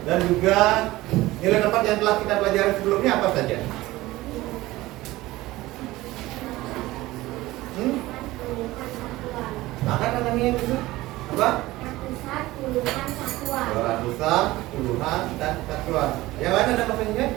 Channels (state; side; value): quieter; left; 18.2 dB